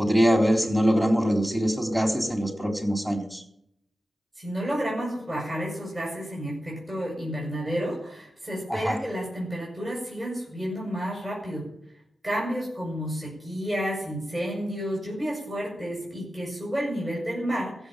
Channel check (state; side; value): normal; both; correlation 0.93